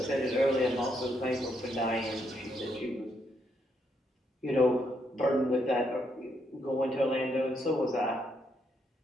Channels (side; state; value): both; normal; correlation 0.76